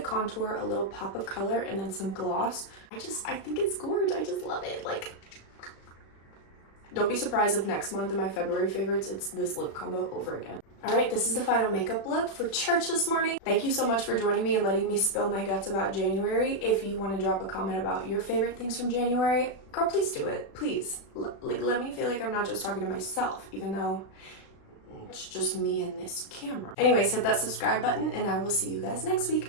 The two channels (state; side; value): late; right; 36 ms